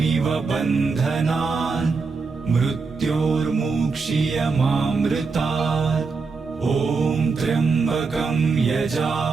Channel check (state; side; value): quieter; left; 4.6 dB